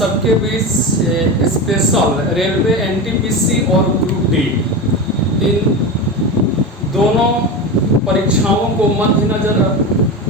बीच स्पेशल रेलवे एनटीपीसी और ग्रुप डी इन दोनों परीक्षाओं को मद्देनजर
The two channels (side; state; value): both; normal; correlation 0.22